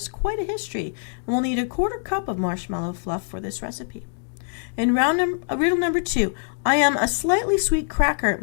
quite a history, and we'll need a 1/4 cup of marshmallow fluff for this recipe. In riddle number 2, I am a slightly sweet cracker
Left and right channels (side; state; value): right; silent; digital silence